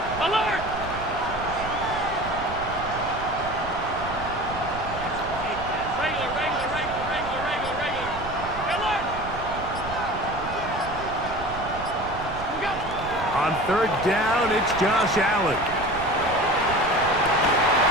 On third down, it's Josh Allen.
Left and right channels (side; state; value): right; noise; rumble, 11 dB below the sound